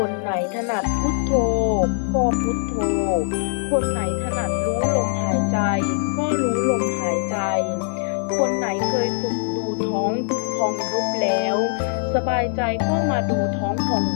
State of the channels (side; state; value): right; silent; 62 dB below the other